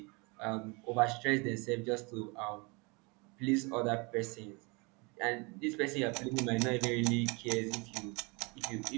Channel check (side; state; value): left; quieter; 29.1 dB